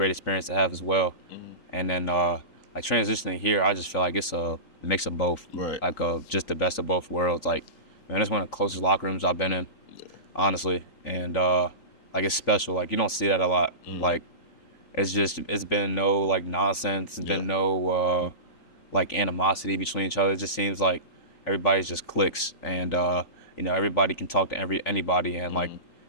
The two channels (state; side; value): late; right; 3.8 ms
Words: experience to have as well. And then like transitioning here, I just feel like it's a mix of both, like just the best of both worlds. Like man, it's one of the closest locker rooms I've been in, honestly, and like it's special. Like you don't see that a lot. Like it's been no like nonsense. It's been no like animosity between each other. It just seems like everybody's just clicks, and you know, everybody can talk to anybody, and like